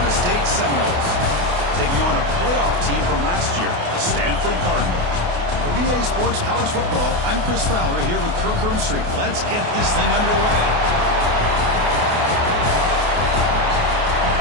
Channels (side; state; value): left; late; 28 ms